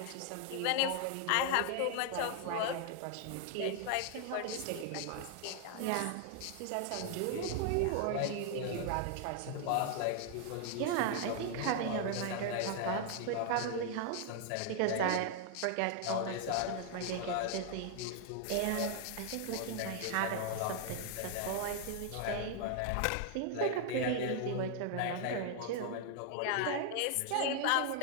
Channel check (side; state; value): both; different; correlation 0.00